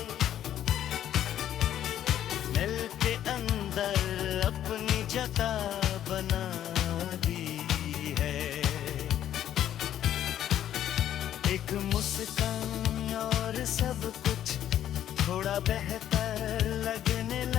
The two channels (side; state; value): right; quieter; 11.1 dB